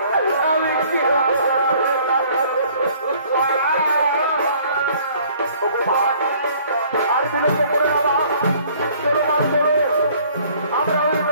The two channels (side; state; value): both; inverted; correlation -0.56